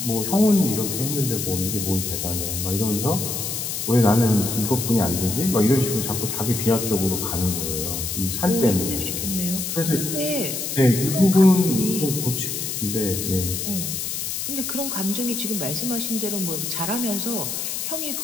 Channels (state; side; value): noise; left; hiss, 3 dB below the sound